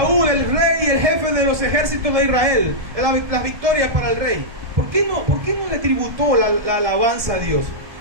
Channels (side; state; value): left; late; 1.7 ms